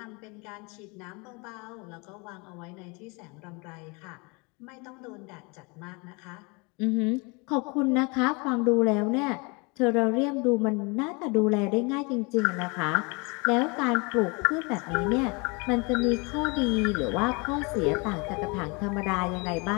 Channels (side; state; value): right; quieter; 29.4 dB